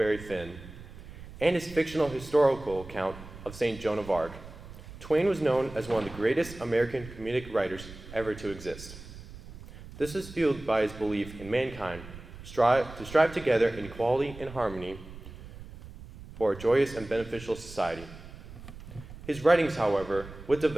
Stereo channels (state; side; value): noise; right; rumble, 15 dB below the sound